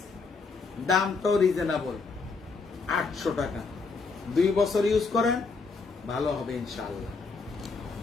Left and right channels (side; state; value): right; quieter; 4.4 dB